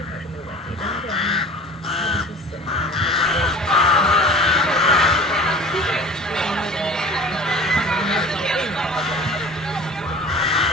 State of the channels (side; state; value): both; normal; correlation 0.41